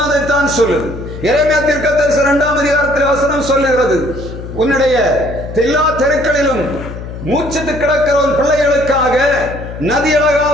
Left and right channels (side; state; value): left; noise; hum, 10 dB below the sound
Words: அதைத்தான் சொல்லுது. எரேமியா தீர்க்க தரிசனம் 2ஆம் அதிகாரத்தில் வசனம் சொல்லுகிறது, உன்னுடைய எல்லா தெருக்களிலும் மூச்சித்து கிடக்கிறவன் பிள்ளைகளுக்காக